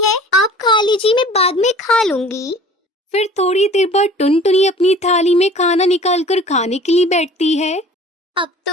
है, आप खा लीजिए, मैं बाद में खा लूंगी। फिर थोड़ी देर बाद टुनटुनी अपनी थाली में खाना निकालकर खाने के लिए बैठती है। अब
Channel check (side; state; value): both; normal; correlation 0.46